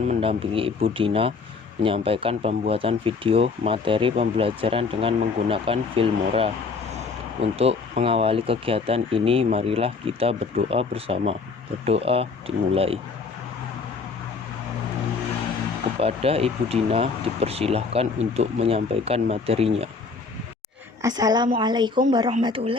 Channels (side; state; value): right; quieter; 4.5 dB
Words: mendampingi Ibu Dina menyampaikan pembuatan video materi pembelajaran dengan menggunakan Filmora. Untuk mengawali kegiatan ini, marilah kita berdoa bersama. Berdoa dimulai. Kepada Ibu Dina dipersilahkan untuk menyampaikan materinya. Assalamualaikum